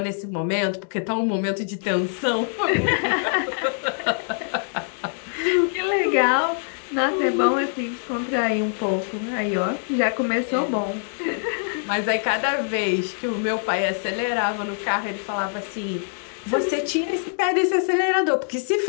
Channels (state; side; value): silent; right; digital silence